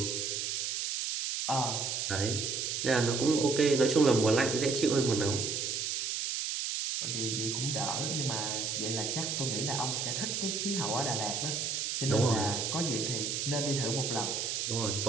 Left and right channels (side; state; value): right; noise; hiss, 1 dB below the sound